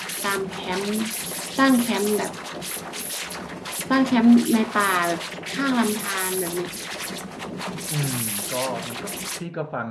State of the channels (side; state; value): both; identical; correlation 1.00